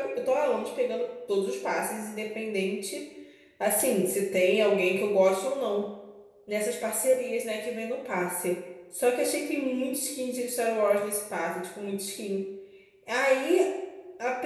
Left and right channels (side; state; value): both; identical; correlation 1.00